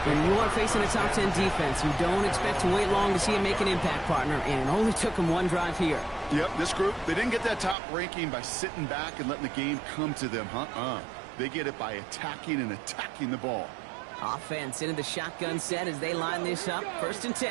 When you are facing a top 10 defense, you don't expect to wait long to see him make an impact, partner, and it only took him 1 drive here. Yep, this group, they didn't get that top ranking by sitting back and letting the game come to them, They get it by attacking the ball. Offense into the shotgun set as they line this up. 1st and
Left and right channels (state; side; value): drops out; left; at 7.8 s